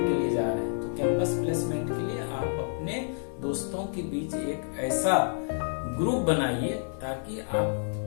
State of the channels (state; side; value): silent; right; 59 dB below the other